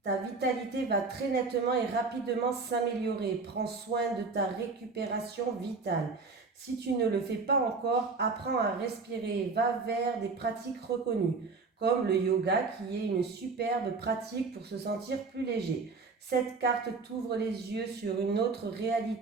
vitalité va très nettement et rapidement s'améliorer. Prends soin de ta récupération vitale. Si tu ne le fais pas encore, apprends à respirer. Va vers des pratiques reconnues, comme le yoga qui est une superbe pratique pour se sentir plus léger. Cette carte t'ouvre les yeux sur une autre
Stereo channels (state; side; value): quieter; left; 4.2 dB